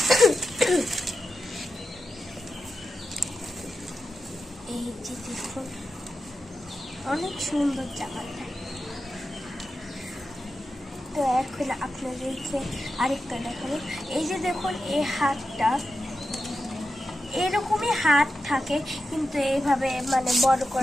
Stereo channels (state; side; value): normal; both; correlation 0.90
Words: এই যে দেখুন অনেক সুন্দর জামাটা। তো এখন আপনাদেরকে আরেকটা দেখাবো। এই যে দেখুন এই হাতটা, এরকমই হাত থাকে, কিন্তু এইভাবে মানে বড়